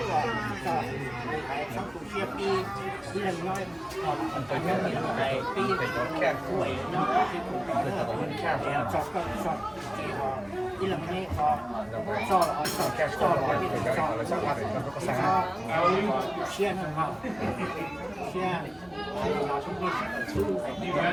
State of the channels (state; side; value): noise; right; hum, 27 dB below the sound